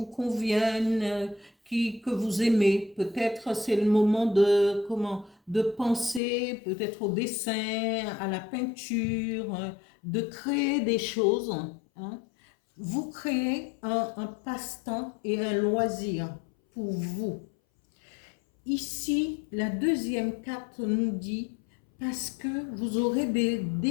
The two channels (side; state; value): right; drops out; at 6.2 s